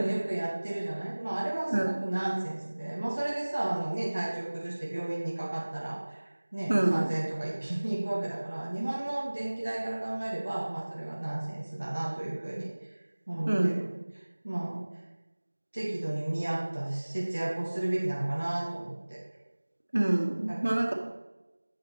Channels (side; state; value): both; inverted; correlation -1.00